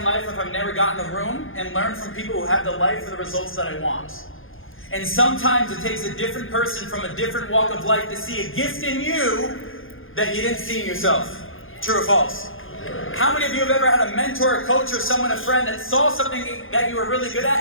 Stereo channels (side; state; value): right; late; 0.59 ms